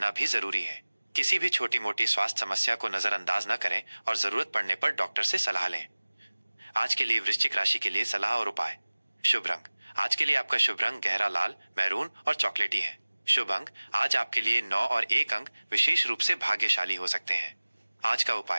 भी जरूरी है। किसी भी छोटी मोटी स्वास्थ्य समस्या को नजरअंदाज न करें और जरूरत पड़ने पर डॉक्टर से सलाह लें। आज के लिए वृश्चिक राशि के लिए सलाह और उपाय। शुभ रंग, आज के लिए आपका शुभ रंग गहरा लाल, मैरून और चॉकलेटी है। शुभ अंक, आज आपके लिए 9 और 1 अंक विशेष रूप से भाग्यशाली हो सकते हैं। आज का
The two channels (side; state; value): both; inverted; correlation -1.00